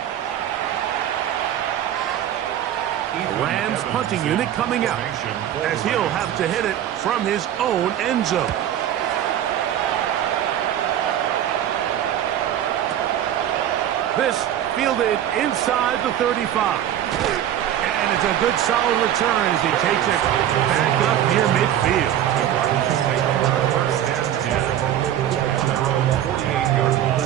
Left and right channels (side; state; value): left; quieter; 11.1 dB